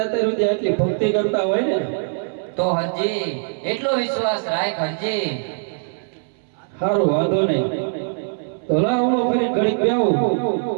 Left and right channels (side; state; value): left; silent; 65 dB below the other